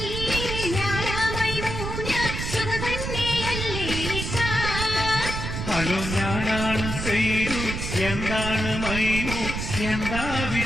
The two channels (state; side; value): noise; right; rumble, 4 dB below the sound